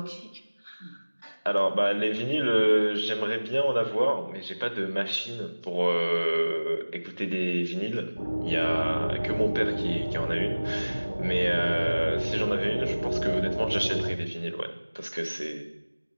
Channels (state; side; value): inverted; both; correlation -1.00